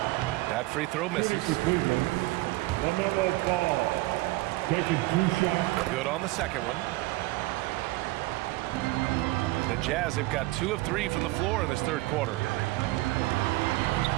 That free throw misses. LaMelo Ball taking 2 shots. Good on the second one. The Jazz have got 2 of 3 from the floor in this third quarter.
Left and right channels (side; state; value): left; quieter; 20.2 dB